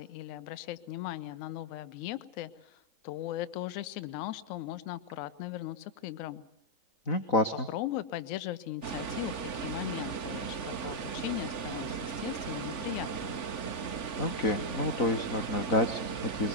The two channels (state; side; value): late; right; 3.4 ms